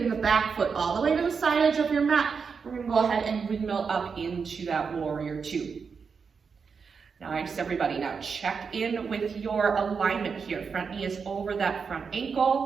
the back foot all the way to the side edge of your mat. We're going to go ahead and windmill up into that warrior two. Nice, everybody. Now check in with your alignment here. Front knee is over that front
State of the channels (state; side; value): quieter; left; 5.7 dB